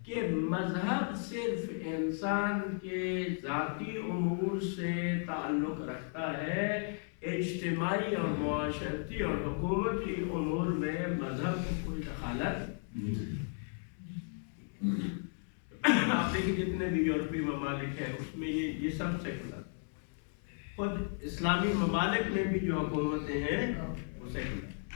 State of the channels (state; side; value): silent; right; 55 dB below the other